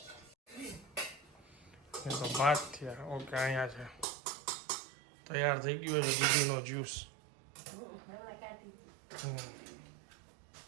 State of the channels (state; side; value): drops out; left; at 4.0 s